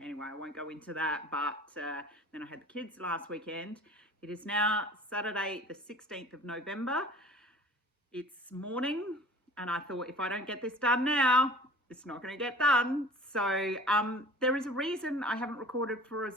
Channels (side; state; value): both; normal; correlation 0.45